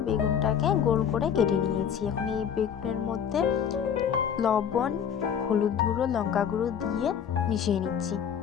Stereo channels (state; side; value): quieter; right; 8.2 dB